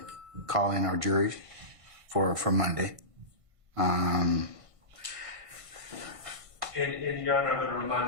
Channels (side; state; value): left; late; 1.5 ms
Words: call in our juries for Monday. And Your Honor, I'm going to